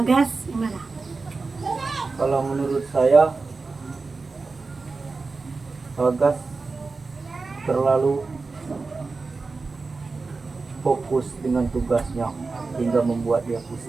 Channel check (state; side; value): quieter; left; 4.0 dB